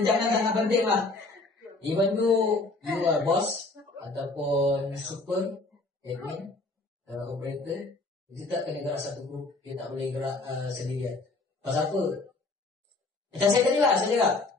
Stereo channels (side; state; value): right; quieter; 3.3 dB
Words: sangat penting lah. Even you are boss ataupun super admin operator, kita tak kena gerak satu grup. Kita tak boleh gerak sendirian. Pasal apa? Macam saya tadi lah, saya cakap